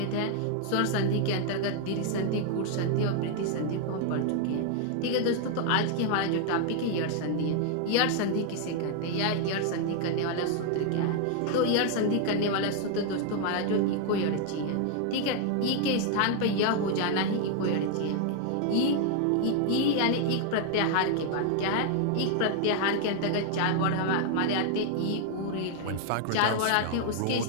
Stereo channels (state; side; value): different; both; correlation 0.00